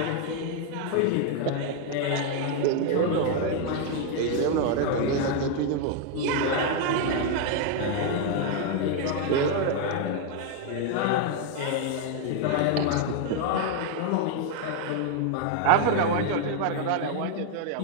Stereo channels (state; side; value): different; both; correlation 0.00